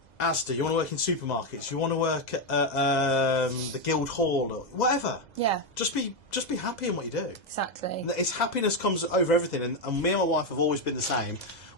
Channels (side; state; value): right; late; 2.0 ms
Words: Asda, you want to work in supermarkets, you want to work at the Guildhall, or whatever. Yeah. Just be happy in what you do. Exactly. It's happiness comes over everything, and me and my wife have always been the same.